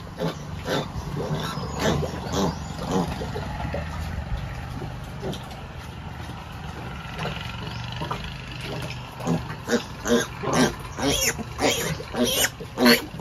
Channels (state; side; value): identical; both; correlation 1.00